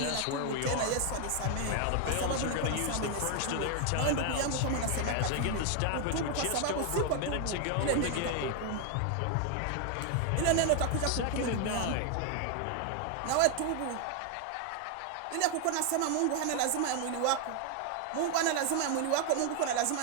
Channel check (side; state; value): both; different; correlation 0.00